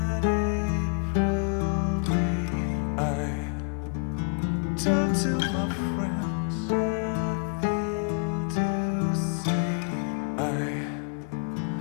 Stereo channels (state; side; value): quieter; right; 37.6 dB